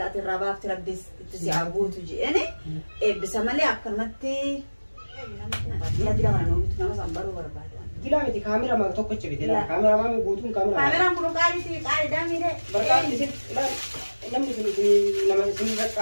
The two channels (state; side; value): inverted; both; correlation -1.00